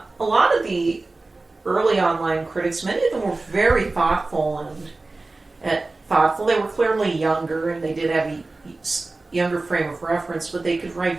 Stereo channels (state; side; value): quieter; left; 3.3 dB